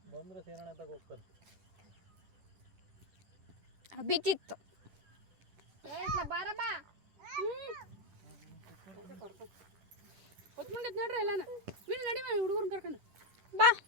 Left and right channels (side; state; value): left; late; 10 ms